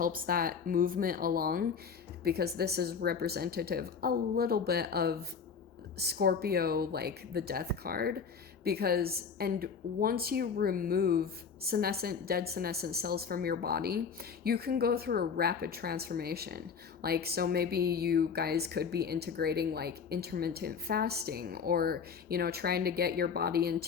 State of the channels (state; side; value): quieter; right; 6.1 dB